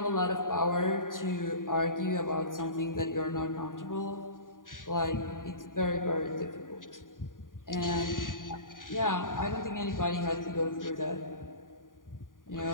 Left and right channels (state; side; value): late; right; 0.89 ms